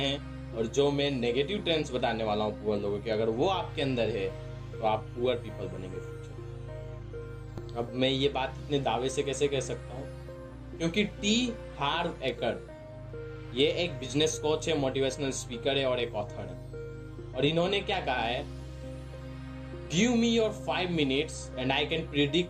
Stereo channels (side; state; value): both; identical; correlation 1.00